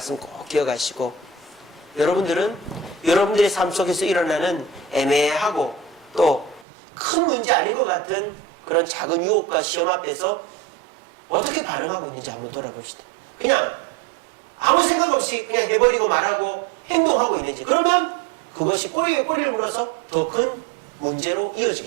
꼭 기억하시고, 여러분들은 여러분들의 삶 속에서 일어나는 애매하고 또 큰 문제 아닌 것 같은 그런 작은 유혹과 시험 앞에서 어떻게 반응하고 있는지 한번 돌아봅시다. 그냥 아무 생각 없이 그냥 해버리고 말하고 행동하고 있는지, 그러면 그것이 꼬리에 꼬리를 물어서 더 큰 문제로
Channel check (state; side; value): drops out; left; at 6.7 s